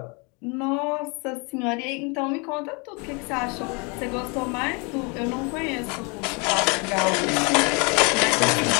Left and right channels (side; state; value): right; quieter; 31.6 dB